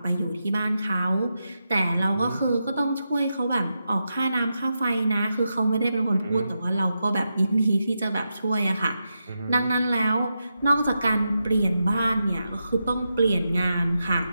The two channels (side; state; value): both; inverted; correlation -0.87